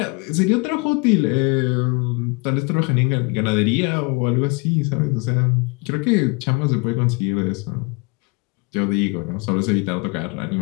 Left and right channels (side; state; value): right; quieter; 30.3 dB